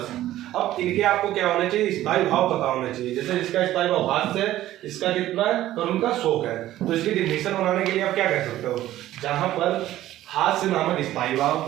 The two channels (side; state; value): left; quieter; 14.1 dB